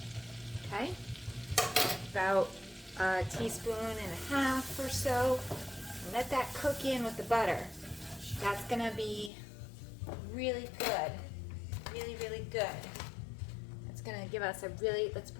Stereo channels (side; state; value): right; drops out; at 9.3 s